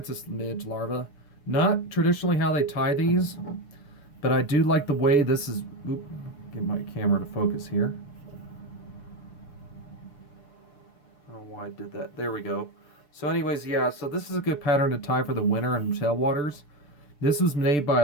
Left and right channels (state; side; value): late; right; 6.8 ms